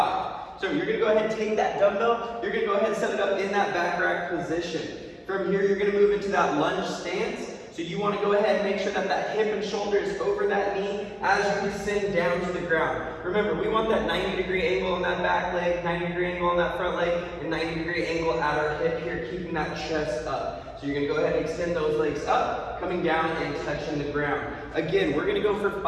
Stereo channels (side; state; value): both; identical; correlation 1.00